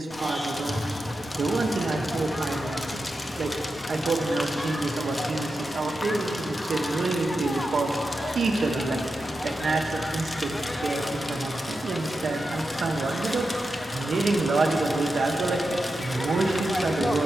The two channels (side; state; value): both; normal; correlation 0.89